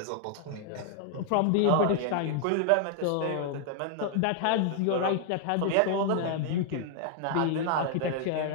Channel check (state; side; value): different; both; correlation -0.01